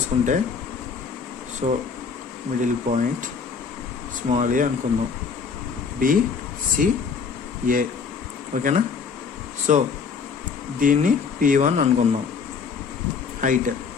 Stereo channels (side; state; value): right; quieter; 5.6 dB